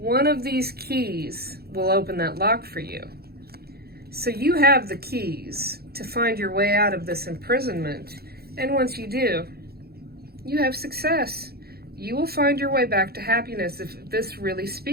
of these keys will open that lock for you. So you have the keys to find your way out of this imprisonment. And once you do, you have success. You will find your way back to happiness if this really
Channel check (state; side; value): late; left; 0.45 ms